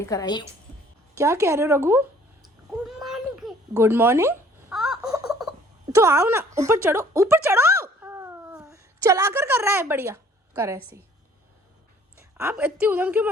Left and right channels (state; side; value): normal; both; correlation 0.56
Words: आई हूँ। क्या कह रहे हो रघु? Good morning. तो आओ ना, ऊपर चढ़ो, ऊपर चढ़ो। चलाकर कर रहा है, बढ़िया कर ऐसे ही। आप इतनी उधम क्यों